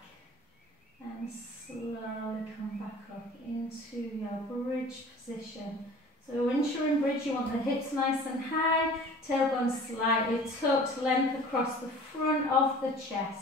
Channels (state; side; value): normal; both; correlation 0.44